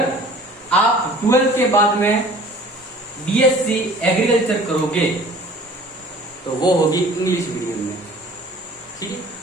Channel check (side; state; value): both; normal; correlation 0.48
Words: आप 12th के बाद में बीएससी एग्रीकल्चर करोगे तो वो होगी इंग्लिश मीडियम में, ठीक है।